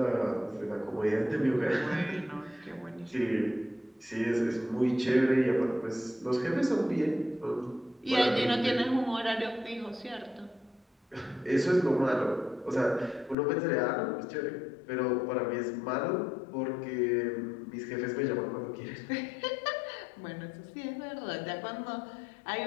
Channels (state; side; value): drops out; right; at 13.4 s